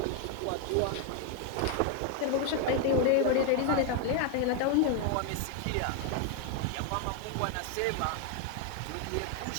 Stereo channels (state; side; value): different; both; correlation 0.00